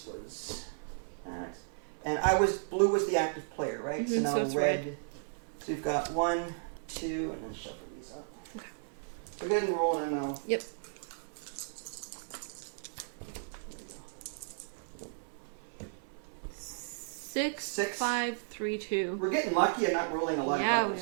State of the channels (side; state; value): left; silent; 55 dB below the other